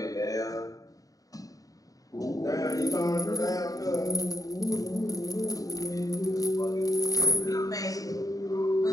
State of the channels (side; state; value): right; late; 0.17 ms